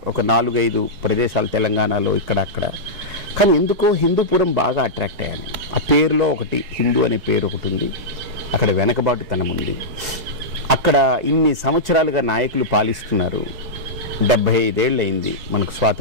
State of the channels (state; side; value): late; left; 4.7 ms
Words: ఒక 4-5 ప్రదేశాలు తెలంగాణలో ఇక్కడ అక్కడ. కానీ ఎందుకో హిందూపురం బాగా అట్రాక్ట్ అయ్యాను. ఆ పేరులో ఒకటి హిందూ అనే పేరు ఒకటి ఉంది, అక్కడ వెనకబాటుతనం ఉంది, అక్కడ ఇన్ని సంవత్సరాలుగా నాయకులు పాలిస్తున్నారు. 75 ఏళ్ళు అయింది మనకు